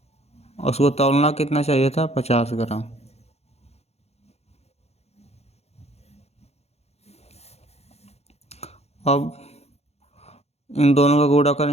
उसको तौलना कितना चाहिए था 50 ग्राम। अब इन दोनों का गुणा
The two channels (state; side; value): late; right; 0.31 ms